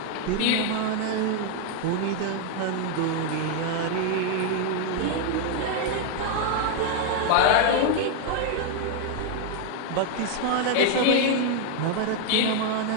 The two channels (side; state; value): both; different; correlation 0.00